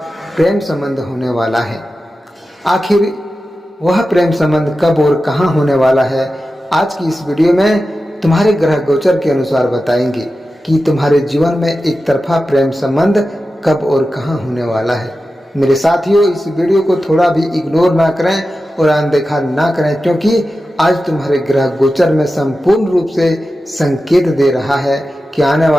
प्रेम संबंध होने वाला है। आखिर वह प्रेम संबंध कब और कहां होने वाला है, आज की इस वीडियो में तुम्हारे ग्रह गोचर के अनुसार बताएंगे कि तुम्हारे जीवन में एक तरफा प्रेम संबंध कब और कहां होने वाला है। मेरे साथियों, इस वीडियो को थोड़ा भी इग्नोर ना करें और अनदेखा ना करें, क्योंकि आज तुम्हारे ग्रह गोचर में संपूर्ण रूप से संकेत दे रहा है कि आने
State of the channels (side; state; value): both; normal; correlation 0.93